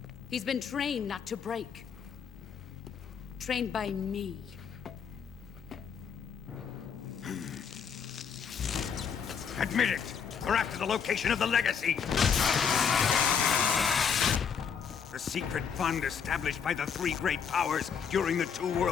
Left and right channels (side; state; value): right; quieter; 7.0 dB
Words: He's been trained not to break. Trained by me. Admit it! We're after the location of the Legacy! The secret fund established by the three great powers during the 2